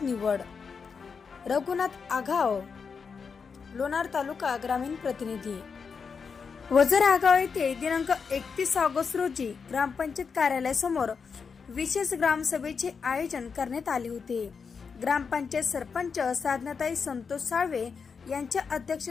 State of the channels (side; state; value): right; quieter; 5.7 dB